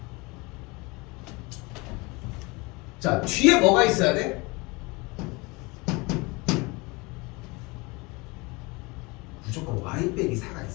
자, 뒤에 뭐가 있어야 돼? 무조건 y 빼기 4가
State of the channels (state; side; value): quieter; right; 26.1 dB